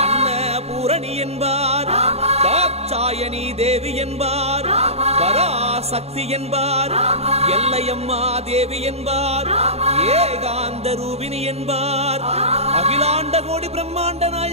அன்னபூரணி என்பார், தாட்சாயணி தேவி என்பார், பராசக்தி என்பார், எல்லையம்மா தேவி என்பார், ஏகாந்த ரூபினி என்பார், அகிலாண்ட கோடி பிரம்மாண்ட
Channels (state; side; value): late; left; 0.30 ms